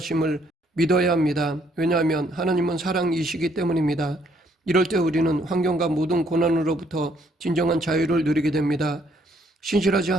믿어야 합니다. 왜냐하면 하나님은 사랑이시기 때문입니다. 이럴 때 우리는 환경과 모든 고난으로부터 진정한 자유를 누리게 됩니다. 신실하신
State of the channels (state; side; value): normal; both; correlation 0.68